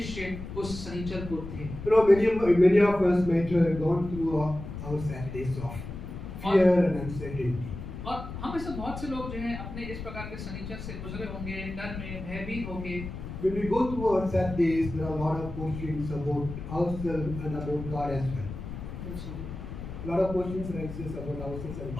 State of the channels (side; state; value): left; noise; rumble, 9 dB below the sound